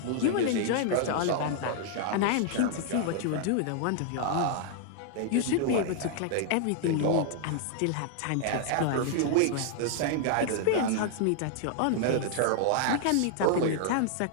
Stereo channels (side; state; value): both; different; correlation -0.01